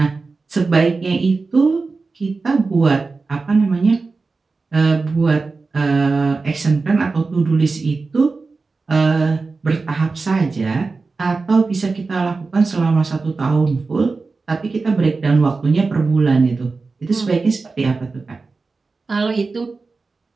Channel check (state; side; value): quieter; left; 4.0 dB